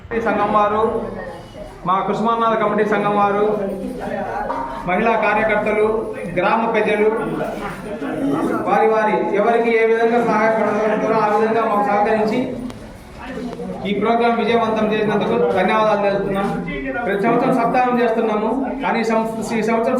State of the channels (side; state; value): both; identical; correlation 1.00